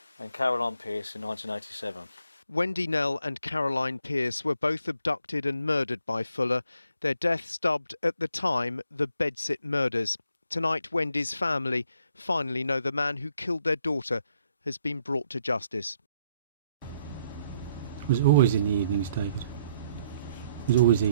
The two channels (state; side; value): inverted; both; correlation -0.70